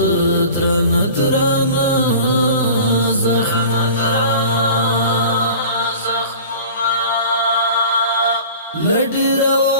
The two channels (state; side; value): inverted; both; correlation -0.41